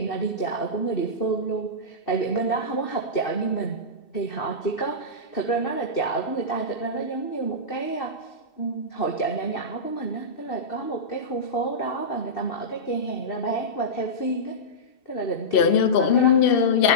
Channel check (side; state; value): right; late; 2.7 ms